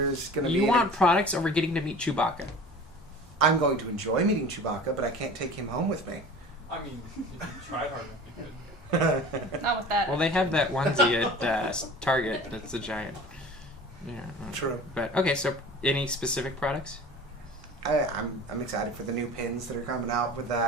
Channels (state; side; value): normal; both; correlation 0.41